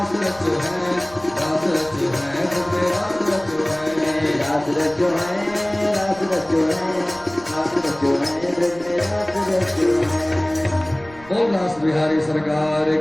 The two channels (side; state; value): right; noise; rumble, 22 dB below the sound